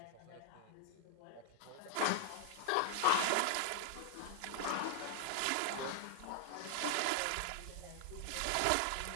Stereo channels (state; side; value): different; both; correlation 0.00